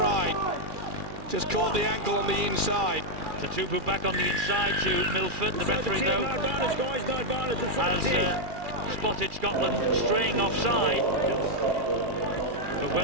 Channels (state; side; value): late; left; 2.4 ms